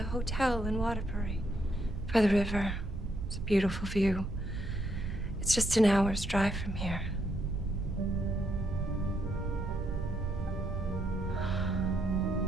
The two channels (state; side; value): noise; right; rumble, 6 dB below the sound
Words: hotel in Waterbury, by the river. It's a beautiful view. It's just an hour's drive from here.